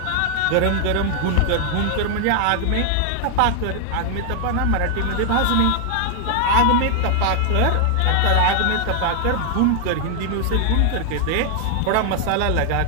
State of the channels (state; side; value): different; both; correlation 0.00